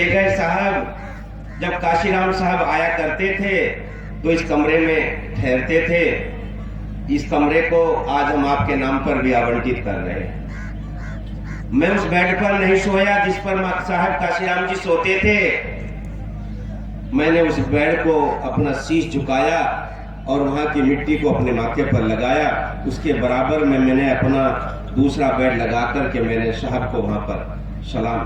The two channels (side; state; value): both; identical; correlation 1.00